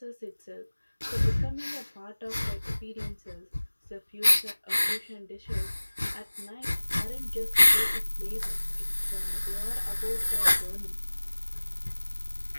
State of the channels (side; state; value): both; inverted; correlation -1.00